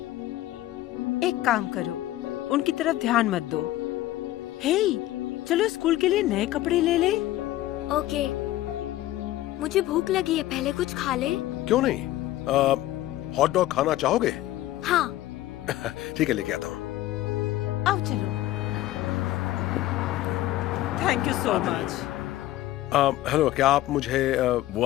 एक काम करो, उनकी तरफ ध्यान मत दो। हे, चलो स्कूल के लिए नए कपड़े ले ले। ओके। मुझे भूख लगी है, पहले कुछ खा ले। क्यों नहीं? हॉट डॉग खाना चाहोगे? हाँ। ठीक है, लेके आता हूँ। आओ चलो। Thank you so much. Hello, क्या आप मुझे वो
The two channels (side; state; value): right; quieter; 15.3 dB